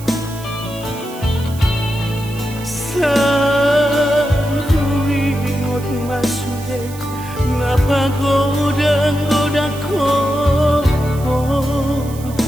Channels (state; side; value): noise; right; hiss, 18 dB below the sound